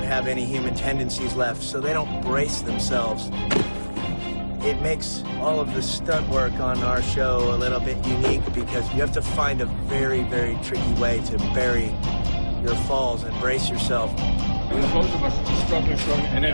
have any human tendencies left, so they don't brace themselves. It makes all of the stunt work on our show a little bit unique because you have to find a very, very tricky way to bury your falls and brace yourself. Both of us struggling, and then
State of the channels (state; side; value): inverted; both; correlation -1.00